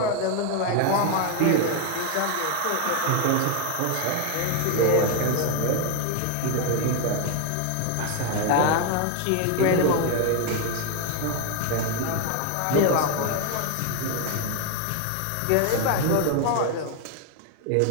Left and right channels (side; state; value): both; different; correlation 0.01